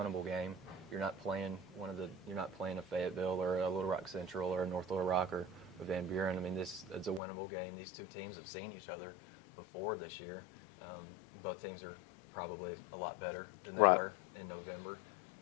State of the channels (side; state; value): right; drops out; at 7.2 s